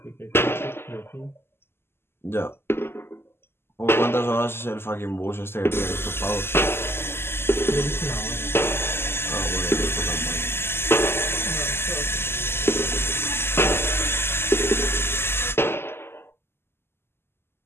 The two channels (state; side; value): late; right; 0.12 ms